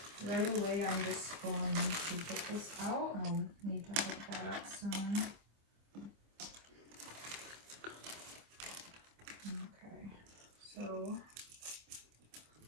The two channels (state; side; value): late; left; 25 ms